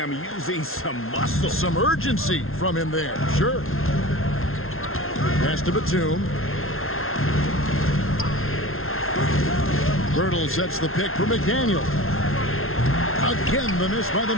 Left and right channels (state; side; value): late; right; 0.61 ms